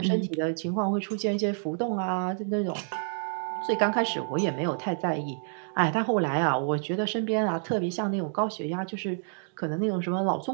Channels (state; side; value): silent; left; digital silence